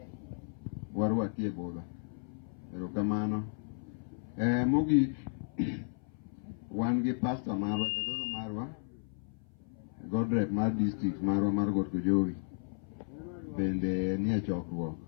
warwaki e budho. Erokamano. Mogik wan gi pastor marwa jadolo marwa Godred mar district marwa mar Got Kojowi bende nie chokruok.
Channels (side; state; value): right; silent; 55 dB below the other